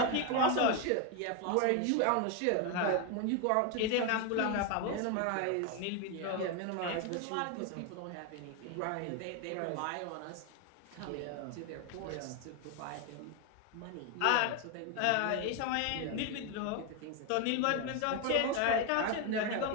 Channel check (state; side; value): different; both; correlation 0.01